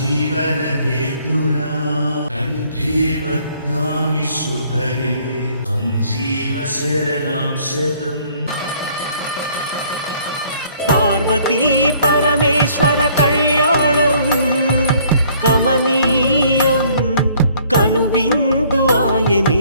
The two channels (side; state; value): both; inverted; correlation -0.60